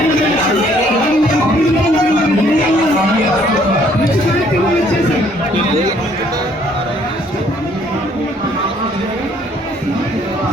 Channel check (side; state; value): both; normal; correlation 0.63